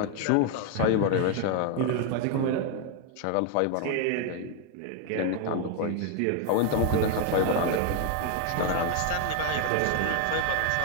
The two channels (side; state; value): both; different; correlation 0.00